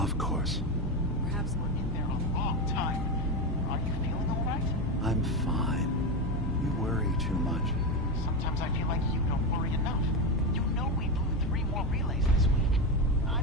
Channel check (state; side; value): normal; both; correlation 0.14